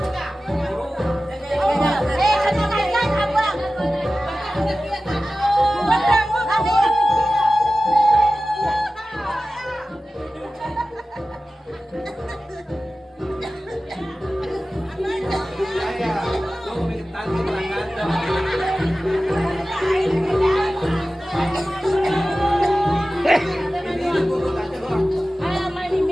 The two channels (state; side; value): normal; both; correlation 0.95